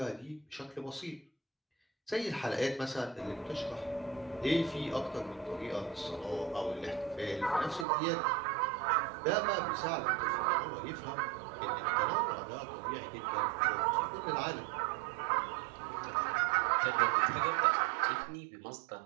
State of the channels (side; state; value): left; drops out; at 7.9 s